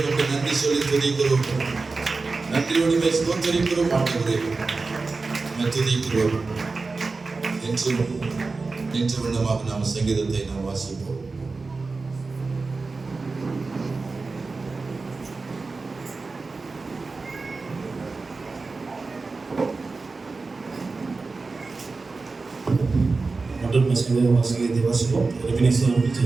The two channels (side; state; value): left; quieter; 3.9 dB